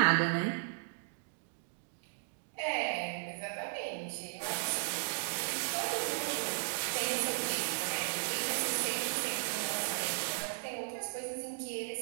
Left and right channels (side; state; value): left; silent; digital silence